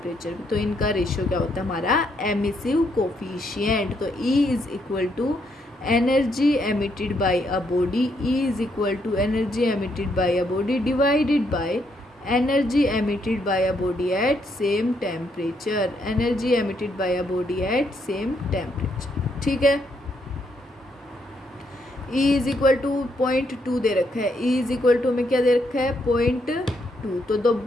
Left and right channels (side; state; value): both; normal; correlation 0.75